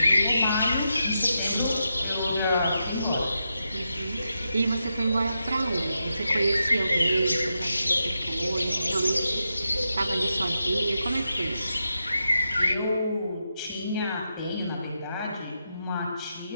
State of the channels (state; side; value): inverted; both; correlation -0.86